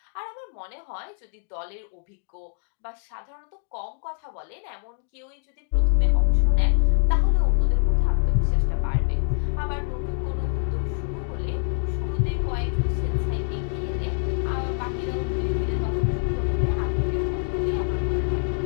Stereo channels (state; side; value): silent; right; digital silence